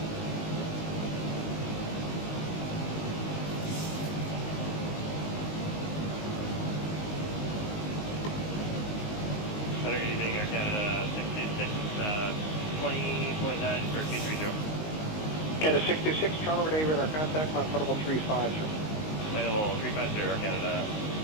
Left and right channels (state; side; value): late; right; 19 ms